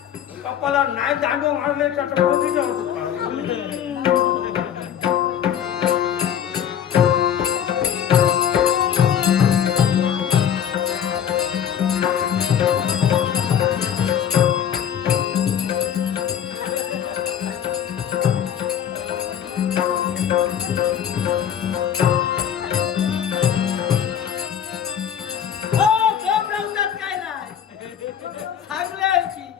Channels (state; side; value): quieter; right; 9.2 dB